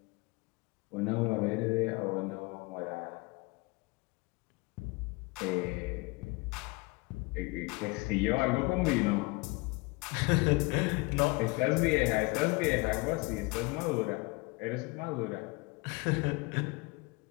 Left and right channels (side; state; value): right; quieter; 26.9 dB